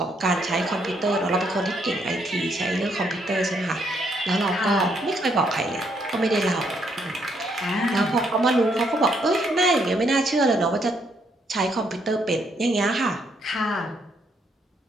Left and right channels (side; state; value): both; normal; correlation 0.73